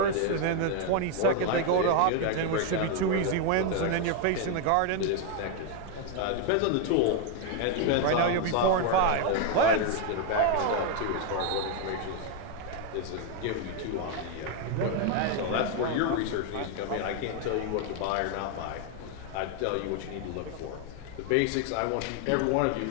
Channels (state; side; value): different; both; correlation 0.01